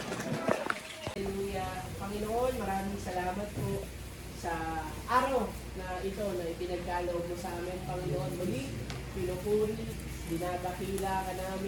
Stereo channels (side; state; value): both; identical; correlation 1.00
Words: Hallelujah. Panginoon, maraming salamat po sa araw na ito na ipinagkaloob mo sa amin, Panginoon. Muli, pinupuri, dinadakila ka